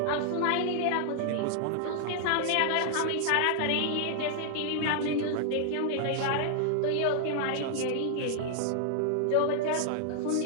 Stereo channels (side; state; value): both; different; correlation 0.00